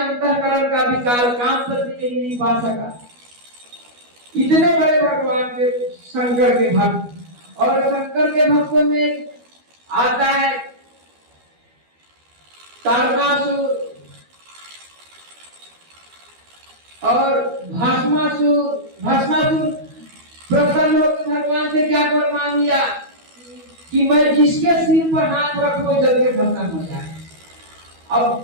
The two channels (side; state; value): left; late; 12 ms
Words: का विकार काम करने नहीं पा सका। इतने बड़े भगवान के शंकर के भक्त, और शंकर के भक्तों में आता है तारकासुर, और भस्मासुर प्रसन्न होकर भगवान से क्या वर मांग लिया कि मैं जिसके सिर पर हाथ रखूं जल के भस्म हो जाए।